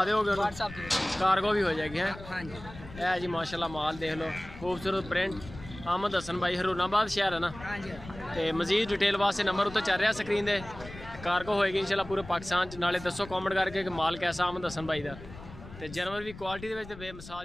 दोगे? व्हाट्सएप कार्गो भी हो जाएगी है? हाँ जी। है जी माशाल्लाह माल देख लो, खूबसूरत प्रिंट। अहमद हसन भाई हरूनाबाद शहर है ना? हाँ जी। तो मजीद डिटेल वास्ते नंबर उत्ते चल रहा स्क्रीन दे। कार्गो होएगी इंशाल्लाह पूरे पाकिस्तान च। नाले दसो कॉमेंट करके कि माल कैसा अहमद हसन भाई का। तो जानवर भी क्वालिटी दे विच ते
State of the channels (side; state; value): left; noise; rumble, 15 dB below the sound